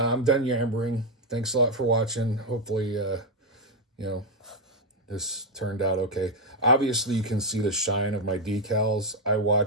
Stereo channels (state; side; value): normal; both; correlation 0.02